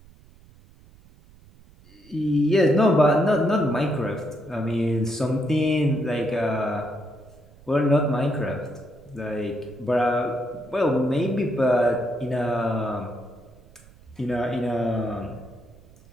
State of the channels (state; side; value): noise; right; rumble, 25 dB below the sound